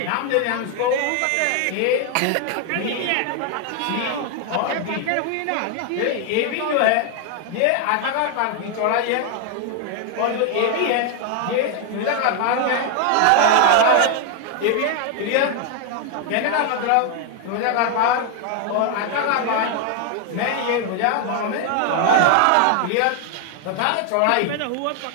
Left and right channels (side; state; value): both; different; correlation 0.00